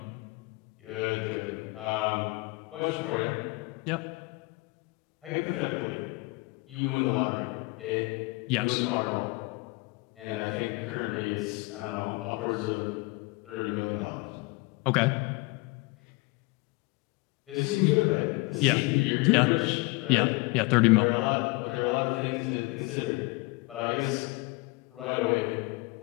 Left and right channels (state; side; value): quieter; right; 25.0 dB